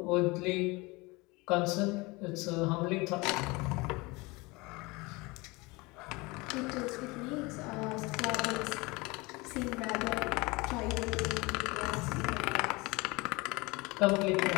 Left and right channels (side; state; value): right; quieter; 24.4 dB